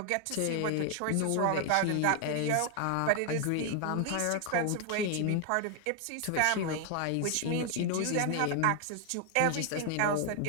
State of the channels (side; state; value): both; different; correlation 0.00